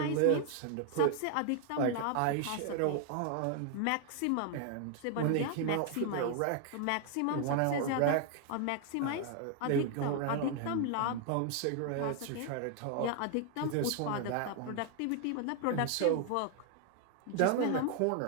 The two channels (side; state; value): both; different; correlation 0.00